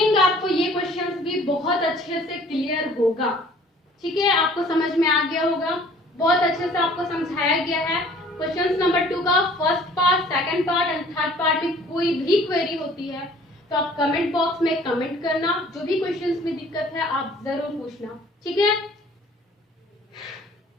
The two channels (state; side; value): normal; both; correlation 0.53